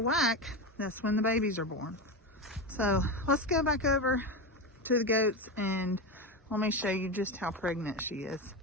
whack, that's when the babies are born. So let's go back over to the goats and let me show you just how pregnant she is.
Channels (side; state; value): both; normal; correlation 0.17